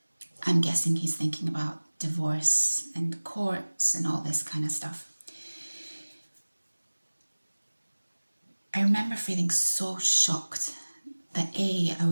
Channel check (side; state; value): both; inverted; correlation -1.00